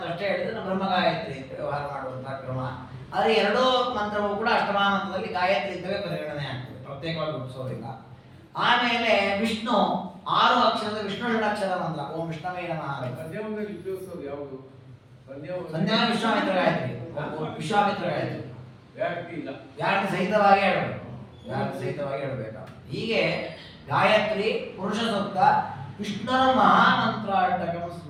ಅಷ್ಟೇ ಹೇಳಿದ್ರೆ ಬ್ರಹ್ಮ ಗಾಯತ್ರಿ ಅಂತ ವ್ಯವಹಾರ ಮಾಡುವಂತಹ ಕ್ರಮ. ಆದರೆ ಎರಡೂ ಮಂತ್ರವೂ ಕೂಡ ಅಷ್ಟಮಹಾಮಂತ್ರದಲ್ಲಿ ಗಾಯತ್ರಿ ಅಂತವೇ ಪರಿಗಣನೆ ಆಗ್ತದೆ, ಪ್ರತ್ಯೇಕವಾಗಿ ಗುರುತಿಸೋದಿಲ್ಲ. ಆಮೇಲೆ ವಿಷ್ಣು 6 ಅಕ್ಷರದ ವಿಷ್ಣು ಷಡಕ್ಷರ ಮಂತ್ರ. ಓಂ ವಿಷ್ಣವೇ ನಮಃ. ಸಂಧ್ಯಾ ವಿಶ್ವಾಮಿತ್ರ ಗಾಯತ್ರಿ, ವಿಶ್ವಾಮಿತ್ರ ಗಾಯತ್ರಿ ವ್ಯಾಹೃತಿ ಸಹಿತವಾಗಿ ಹೇಳಬೇಕು. ಹೀಗೆ ಗಾಯತ್ರಿ, ಪುರುಷ ಸೂಕ್ತ, ವಿಷ್ಣುರ ಮಹಾಮಂತ್ರಾಟಕಂ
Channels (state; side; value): identical; both; correlation 1.00